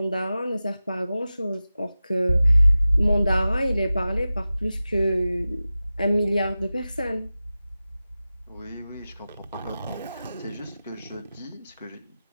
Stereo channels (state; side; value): inverted; both; correlation -0.95